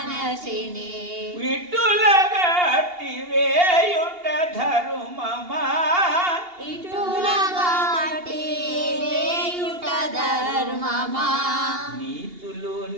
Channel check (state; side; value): late; left; 2.8 ms